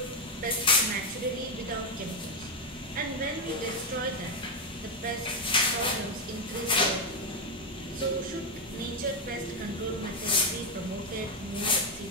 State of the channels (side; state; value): both; normal; correlation 0.05